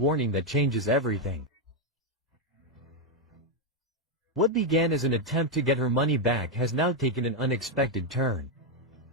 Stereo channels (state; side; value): normal; both; correlation 0.03